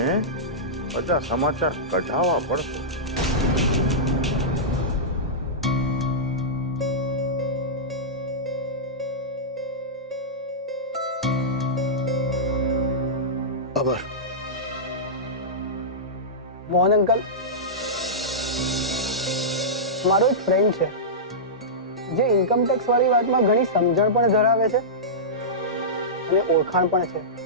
બધા સમાચાર કઢાવવા પડશે. ખબર મોહન અંકલ, મારો એક ફ્રેન્ડ છે જે ઇન્કમ ટેક્સ વાળી વાતમાં ઘણી સમજણ પણ ધરાવે છે અને ઓળખાણ પણ છે.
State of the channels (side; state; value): both; normal; correlation -0.14